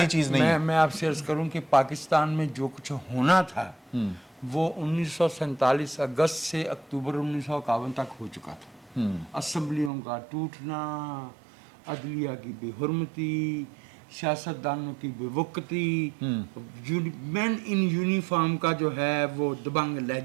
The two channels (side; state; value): left; drops out; at 9.9 s